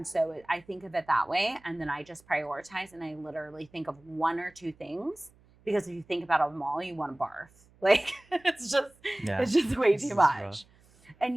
so I think of it that way. And then I just prioritize and I literally think of 1 or 2 things, because if you think about them all, you want to barf. Like it's just way too much.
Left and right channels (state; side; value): noise; right; hum, 29 dB below the sound